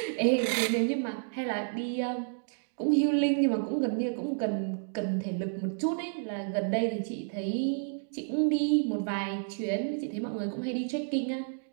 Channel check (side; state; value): left; silent; digital silence